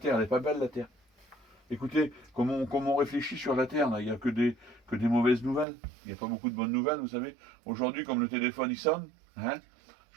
elle n'est pas belle, la terre. Écoutez, comme on réfléchit sur la terre, là, il n'y a que des mauvaises nouvelles. Il n'y a pas beaucoup de bonnes nouvelles, vous savez. Aujourd'hui, comme le téléphone, il sonne, hein,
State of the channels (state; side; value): drops out; left; at 5.7 s